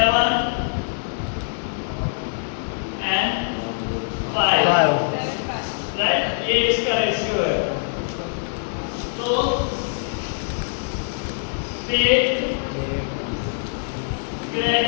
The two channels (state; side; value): silent; right; digital silence